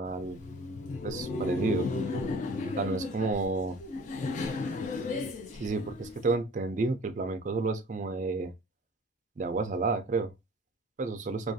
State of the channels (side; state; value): both; normal; correlation 0.46